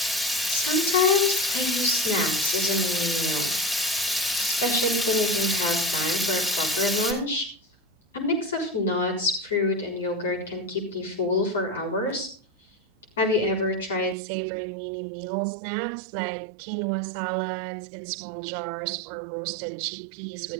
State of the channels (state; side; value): drops out; left; at 14.2 s